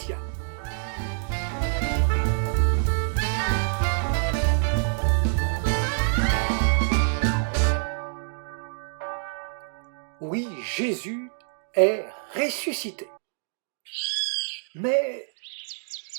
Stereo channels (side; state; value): left; silent; 61 dB below the other